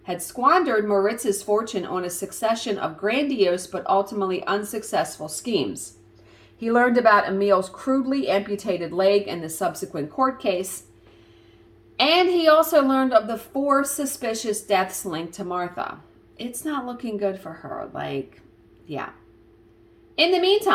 had squandered Moritz's fortune on a succession of grandiose but ultimately unsuccessful schemes. He learned about Emil's crudely amputated leg and the subsequent court case. And he also learned of the 4 suspicious deaths linked to Martha. It's not looking good for her. Yeah. In the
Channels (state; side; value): identical; both; correlation 1.00